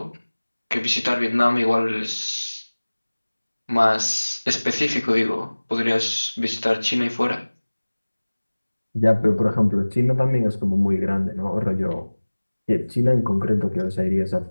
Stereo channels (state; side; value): inverted; both; correlation -1.00